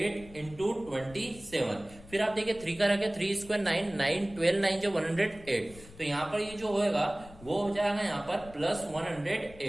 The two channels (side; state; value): left; noise; rumble, 20 dB below the sound